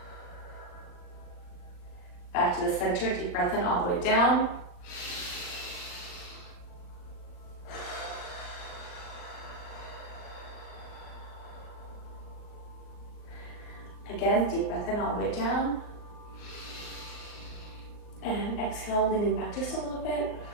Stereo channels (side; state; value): right; late; 39 ms